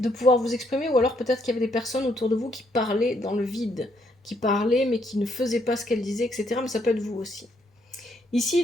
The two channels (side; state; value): both; normal; correlation 0.72